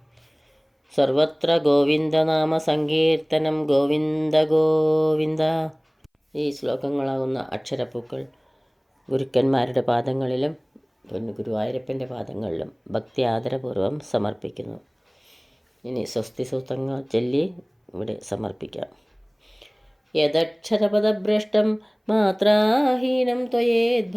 സർവത്ര ഗോവിന്ദനാമ സങ്കീർത്തനം ഗോവിന്ദ ഗോവിന്ദ. ഈ ശ്ലോകങ്ങളാകുന്ന അക്ഷരപ്പൂക്കൾ ഗുരുക്കന്മാരുടെ പാദങ്ങളിലും ഗുരുവായൂരപ്പൻ്റെ പാദങ്ങളിലും ഭക്തി ആദരപൂർവ്വം സമർപ്പിക്കുന്നു. ഇനി സ്വസ്തി സൂക്തങ്ങൾ ചൊല്ലി ഇവിടെ സമർപ്പിക്കാം. യദക്ഷരപദഭ്രഷ്ടം മാത്രാഹീനം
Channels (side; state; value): both; identical; correlation 1.00